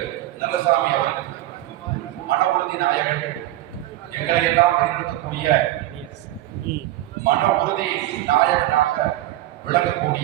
நல்லசாமி அவர்கள் மன உறுதி நாயகன், எங்களை எல்லாம் வழிநடத்தக்கூடிய மன உறுதி நாயகனாக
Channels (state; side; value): quieter; left; 15.2 dB